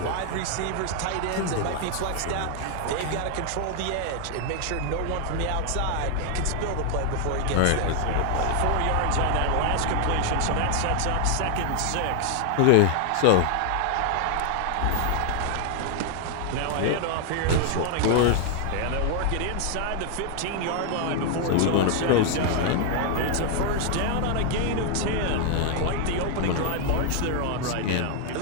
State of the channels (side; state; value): both; different; correlation 0.00